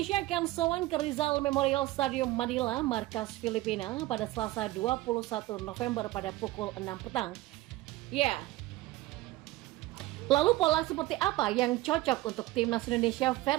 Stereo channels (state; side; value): quieter; left; 17.8 dB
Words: akan sowan ke Rizal Memorial Stadium Manila, markas Filipina pada Selasa 21 November pada pukul 6 petang. Ya. Lalu pola seperti apa yang cocok untuk Timnas Indonesia